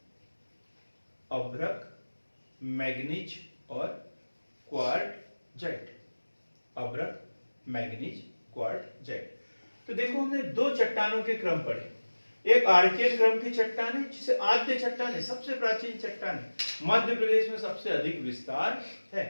अभ्रक, मैग्नीज और क्वार्टजाइट, अभ्रक, मैग्नीज, क्वार्टजाइट। तो देखो हमने दो चट्टानों के क्रम पढ़े। एक आर्कियन क्रम की चट्टान है, जिसे आद्य चट्टान है, सबसे प्राचीन चट्टान है, मध्य प्रदेश में सबसे अधिक विस्तार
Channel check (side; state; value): both; inverted; correlation -1.00